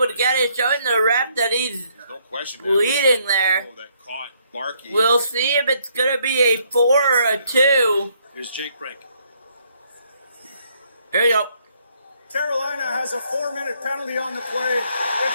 to get it, showing the ref that he's no question leading there. That caught Barkey. We'll see if it's going to be a 4 or a 2. Here's Jake Brink. Here you go. Carolina has a 4-minute penalty on the play.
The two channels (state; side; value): inverted; both; correlation -0.69